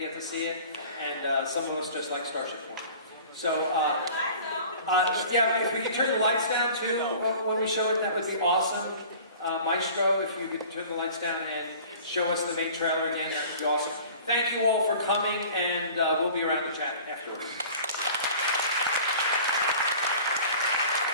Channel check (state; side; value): inverted; both; correlation -0.44